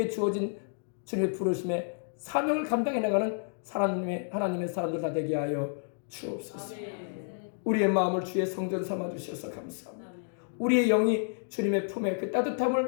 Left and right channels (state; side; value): silent; right; digital silence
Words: 주어진 주님의 부르심에 사명을 감당해 나가는 하나님의 사람들 다 되게 하여 주옵소서. 우리의 마음을 주의 성전 삼아 주셔서 감사합니다. 우리의 영이 주님의 품에 그